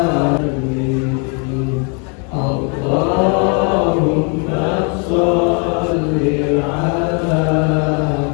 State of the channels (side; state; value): right; quieter; 36.7 dB